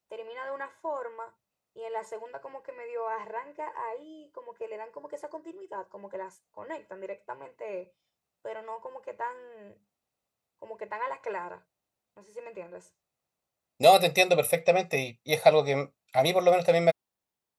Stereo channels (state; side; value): identical; both; correlation 1.00